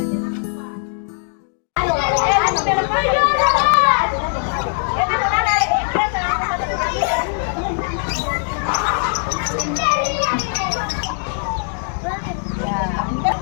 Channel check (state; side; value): silent; right; 63 dB below the other